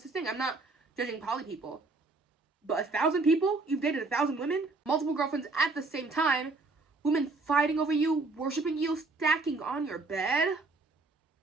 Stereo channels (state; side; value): quieter; left; 3.6 dB